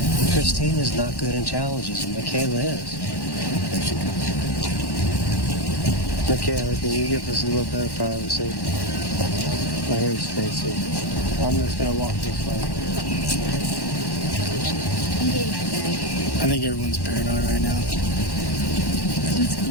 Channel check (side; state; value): right; late; 1.1 ms